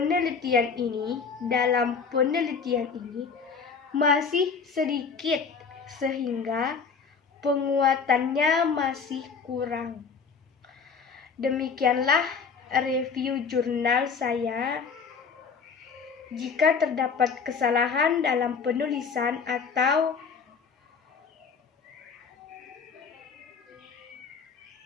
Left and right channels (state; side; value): quieter; right; 5.6 dB